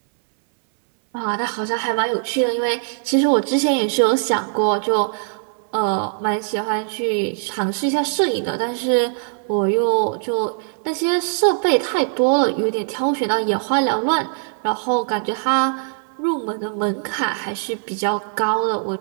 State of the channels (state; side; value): silent; left; 65 dB below the other